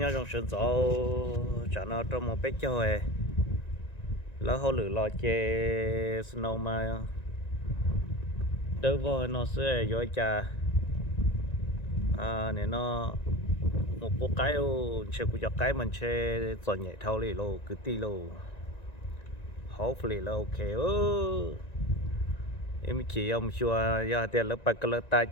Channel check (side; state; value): right; late; 1.9 ms